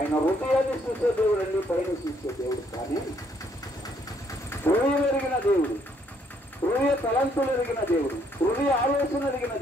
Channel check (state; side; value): normal; both; correlation 0.68